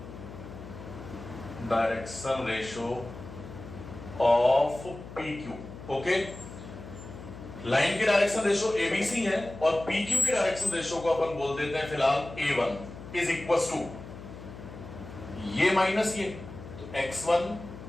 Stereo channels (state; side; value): noise; left; hum, 13 dB below the sound